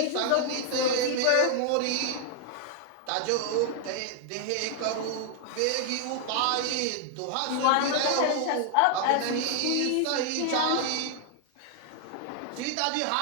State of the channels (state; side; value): different; both; correlation 0.00